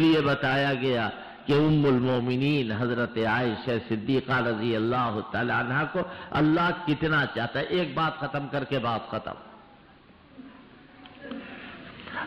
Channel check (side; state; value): both; identical; correlation 1.00